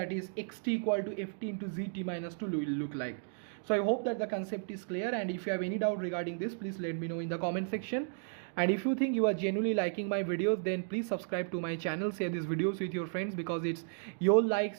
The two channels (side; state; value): left; silent; digital silence